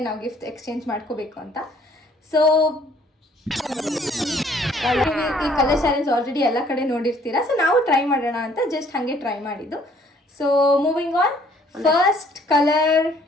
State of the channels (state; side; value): normal; both; correlation 0.60